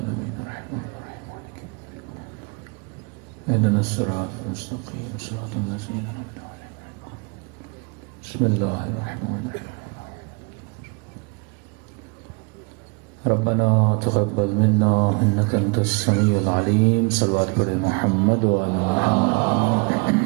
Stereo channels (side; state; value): left; quieter; 31.9 dB